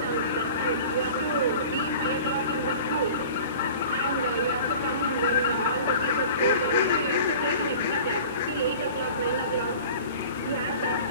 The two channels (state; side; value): inverted; both; correlation -0.41